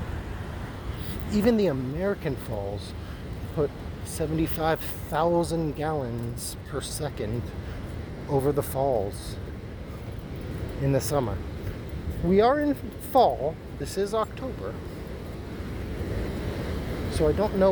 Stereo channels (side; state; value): both; identical; correlation 1.00